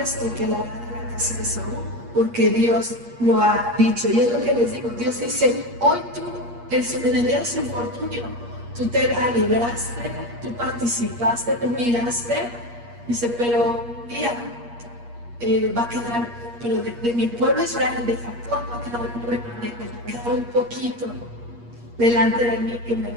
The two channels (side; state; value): left; late; 8.5 ms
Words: quedará de la casa de Saúl, porque Dios lo ha dicho. Y es lo que les digo, Dios dice, hoy tú, en el día de su infortunio, tú te alegraste, tú participaste, tú miraste, dice, pero un día va a quedar, pero de mi pueblo Israel, de Jacob, va a quedar un remanente, va a quedar un poquito delante de mí que me